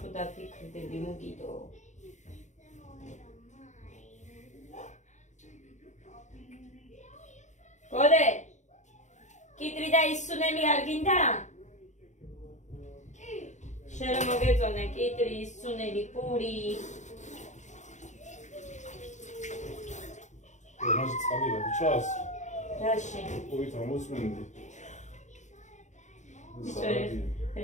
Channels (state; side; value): late; right; 0.34 ms